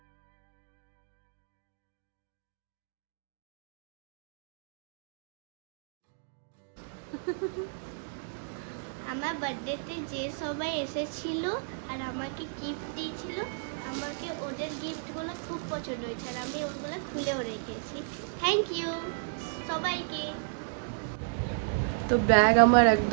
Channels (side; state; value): left; silent; digital silence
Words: আমার বার্থডেতে যে সবাই এসেছিল আর আমাকে গিফট দিয়েছিল, আমাকে ওদের গিফটগুলো খুব পছন্দ হয়েছে আর আমি ওগুলো খুলেও রেখেছি। থ্যাংক ইউ সবাইকে। তো ব্যাগ আমার